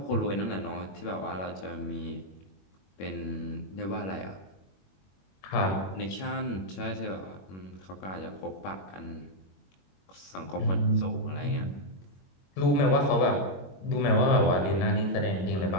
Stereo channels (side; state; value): right; late; 21 ms